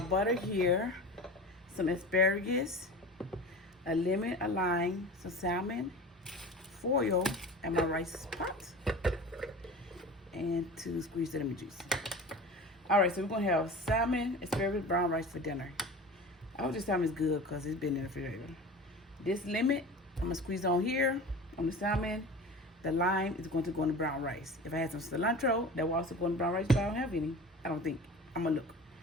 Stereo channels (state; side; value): normal; both; correlation 0.35